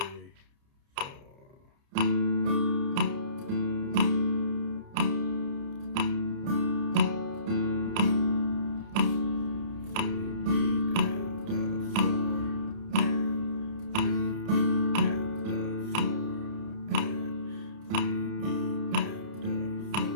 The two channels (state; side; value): late; left; 30 ms